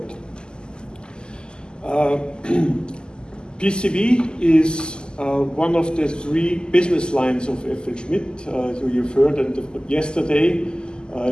PCV is one of the three business lines of FL Schmidt. So you've heard yesterday,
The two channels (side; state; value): right; late; 0.047 ms